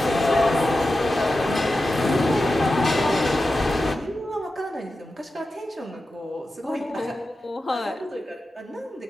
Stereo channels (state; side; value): normal; both; correlation 0.92